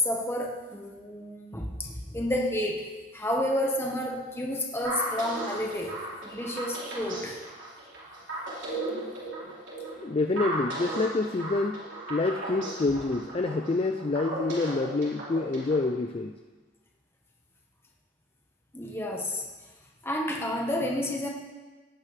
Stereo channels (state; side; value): normal; both; correlation 0.52